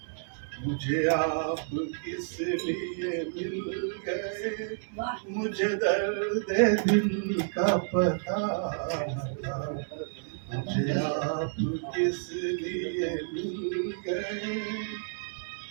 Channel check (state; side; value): silent; left; digital silence